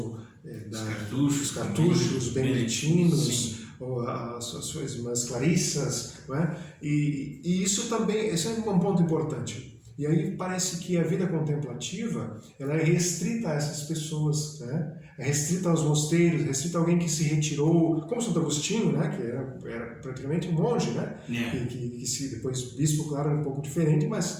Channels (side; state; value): both; identical; correlation 1.00